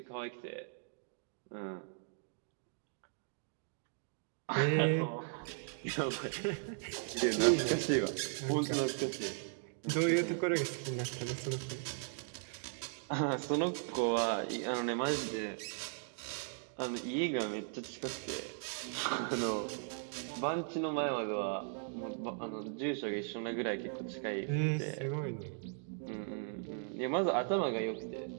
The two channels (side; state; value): left; silent; digital silence